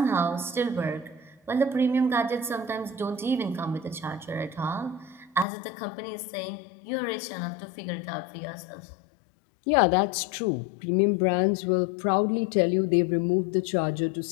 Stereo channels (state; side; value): drops out; right; at 5.5 s